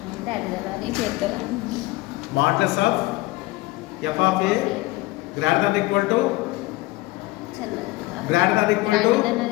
modulus of F of a greater than equal to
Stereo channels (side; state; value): right; quieter; 20.4 dB